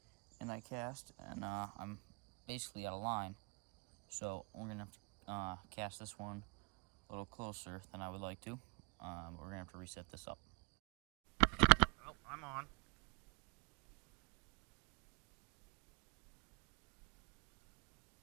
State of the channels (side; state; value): left; quieter; 32.7 dB